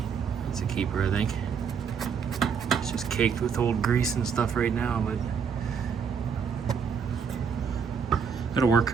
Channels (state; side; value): quieter; left; 6.5 dB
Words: Keeper, I think. It's just caked with old grease and stuff right now, but that'll